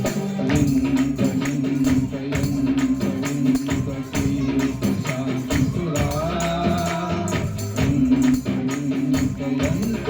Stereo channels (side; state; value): both; identical; correlation 1.00